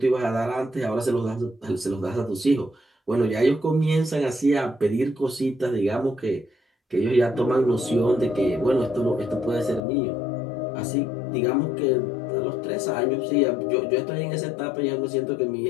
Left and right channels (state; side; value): drops out; right; at 9.8 s